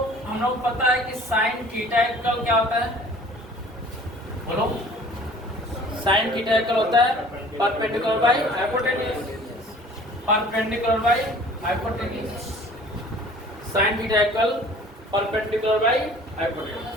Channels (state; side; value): normal; both; correlation 0.49